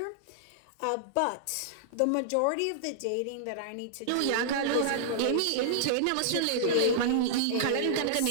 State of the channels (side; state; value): both; different; correlation -0.01